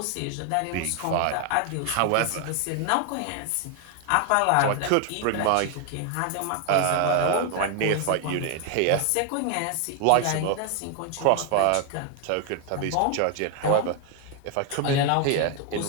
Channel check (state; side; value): different; both; correlation 0.01